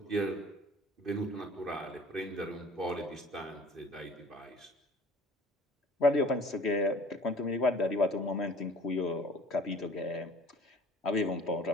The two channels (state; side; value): normal; both; correlation 0.49